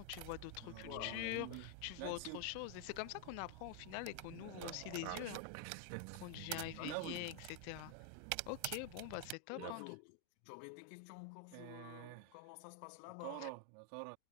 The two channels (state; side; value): different; both; correlation 0.00